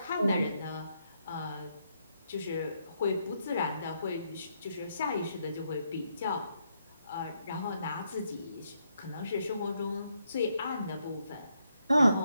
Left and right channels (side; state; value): both; inverted; correlation -0.77